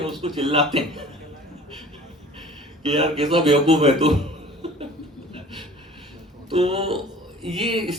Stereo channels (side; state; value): both; normal; correlation 0.46